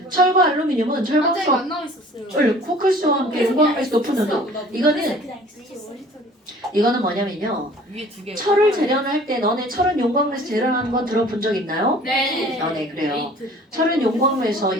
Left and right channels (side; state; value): both; normal; correlation 0.49